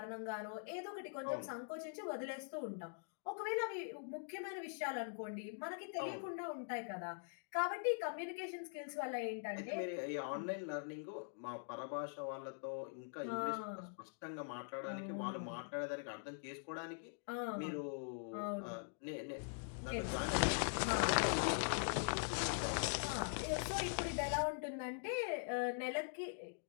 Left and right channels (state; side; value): silent; right; digital silence